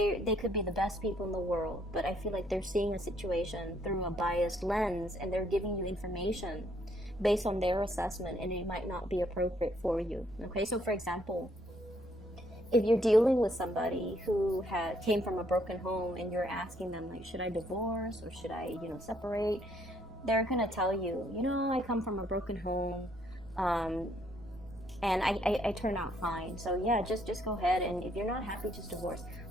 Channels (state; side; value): noise; right; rumble, 21 dB below the sound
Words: could be the best people in the world, but I feel like they're seeing a situation through a biased lens, and they're giving you information based on their assessment, and it might not be appropriate for you. Okay, so for example, if you're dealing with somebody who came from a broken home, and you're asking them, like, should I divorce or should I, you know, separate? They're gonna tell you, you know, I come from a broken home, and I turn out fine. So yeah, just go ahead, and if you're not happy, just divorce.